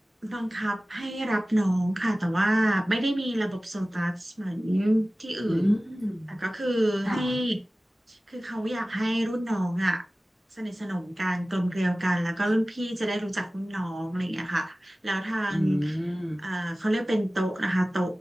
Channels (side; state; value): both; normal; correlation 0.97